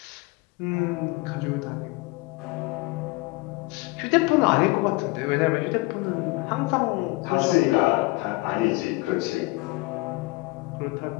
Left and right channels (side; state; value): right; quieter; 23.6 dB